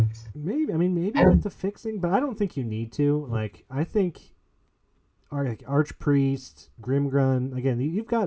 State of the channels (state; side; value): identical; both; correlation 1.00